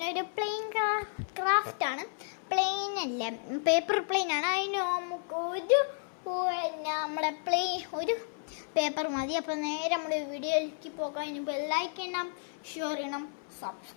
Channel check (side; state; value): right; silent; 56 dB below the other